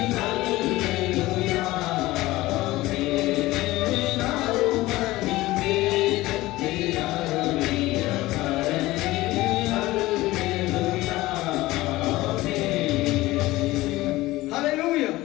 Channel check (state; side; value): quieter; right; 18.3 dB